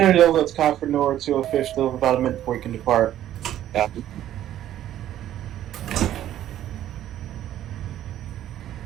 Delta, that's Concord north 205th, still have about a minute before you can depart. Yeah.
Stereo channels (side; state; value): left; quieter; 12.1 dB